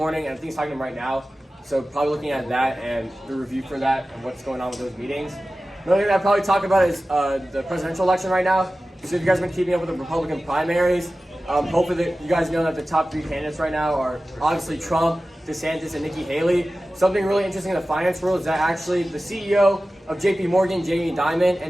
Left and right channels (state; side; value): normal; both; correlation 0.95